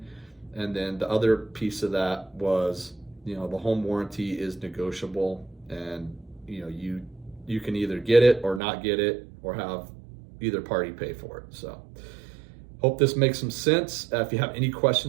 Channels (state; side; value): drops out; left; at 8.6 s